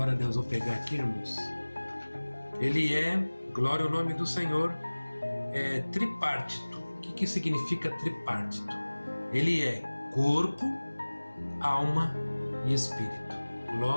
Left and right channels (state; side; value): inverted; both; correlation -1.00